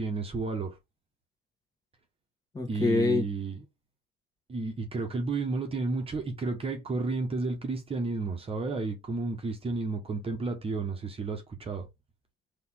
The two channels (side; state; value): both; normal; correlation 0.69